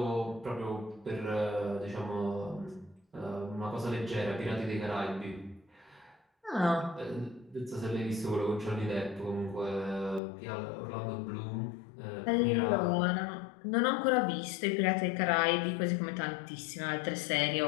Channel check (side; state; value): right; drops out; at 10.2 s